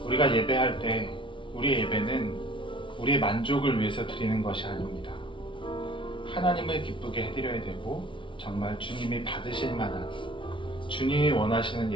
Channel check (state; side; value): late; right; 0.25 ms